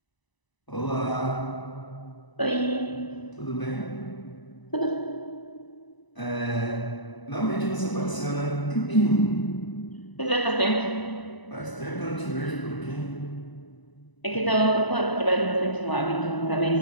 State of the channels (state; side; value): late; right; 1.0 ms